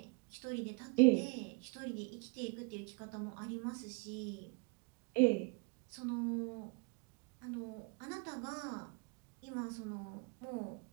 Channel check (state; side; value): quieter; left; 29.5 dB